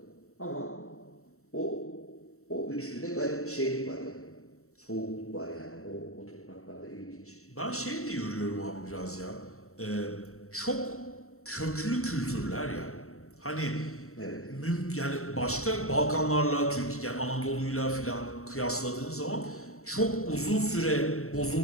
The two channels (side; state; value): right; late; 0.64 ms